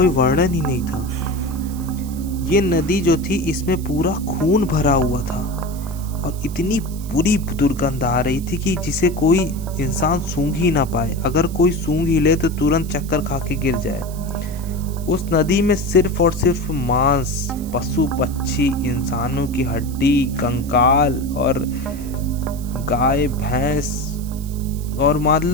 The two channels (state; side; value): noise; right; hiss, 18 dB below the sound